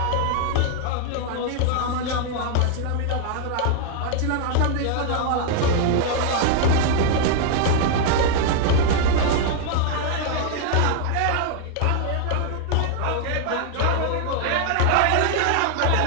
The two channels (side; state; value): both; different; correlation 0.00